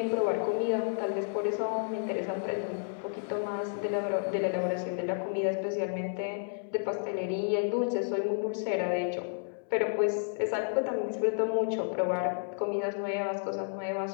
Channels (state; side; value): silent; right; 57 dB below the other